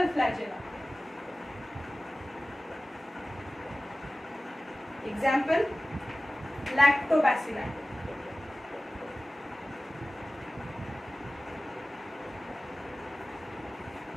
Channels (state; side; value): normal; both; correlation 0.97